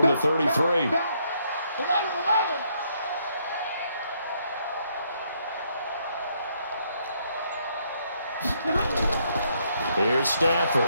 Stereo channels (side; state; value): both; inverted; correlation -0.72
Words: the 33. 11. Here's